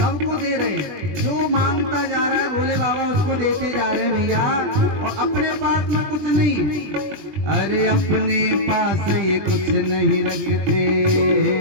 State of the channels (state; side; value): late; left; 20 ms